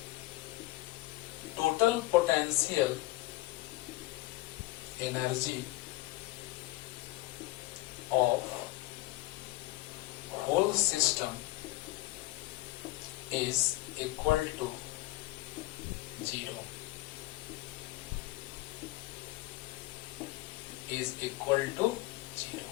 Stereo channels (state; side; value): quieter; right; 19.2 dB